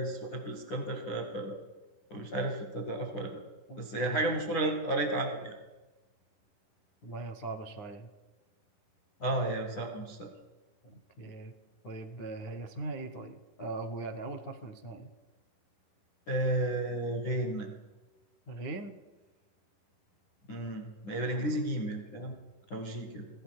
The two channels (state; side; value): late; right; 10 ms